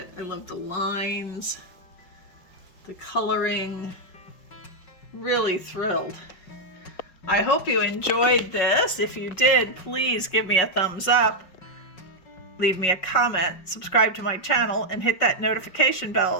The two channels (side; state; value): right; late; 5.4 ms